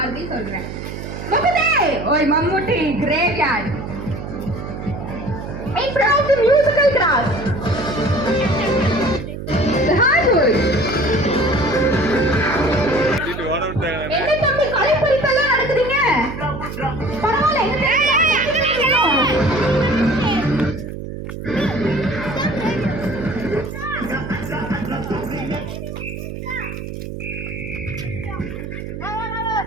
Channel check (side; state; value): right; noise; hum, 8 dB below the sound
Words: சொல்றேன். முகுந்தே ஓய் Mammootty graveyard. In front of the musical grass. The hardwood. என்ன தம்பி கலைப்பறிப்பெல்லாம் நடக்குதுங்க? பரவாயில்ல.